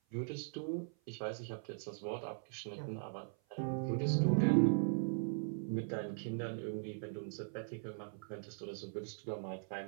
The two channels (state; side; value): silent; left; 51 dB below the other